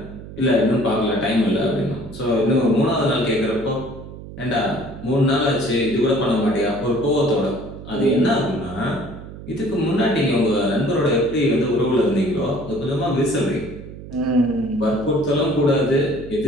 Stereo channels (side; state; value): right; noise; hum, 14 dB below the sound